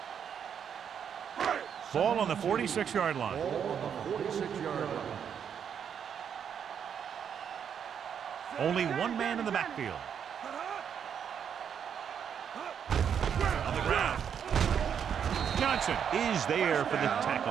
Ball on the 46-yard line. Ball on the 46-yard line. Only one man in the backfield. On the ground. Johnson is there for the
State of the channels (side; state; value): left; quieter; 8.0 dB